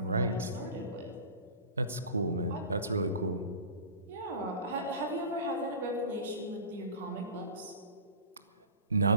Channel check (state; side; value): inverted; both; correlation -0.35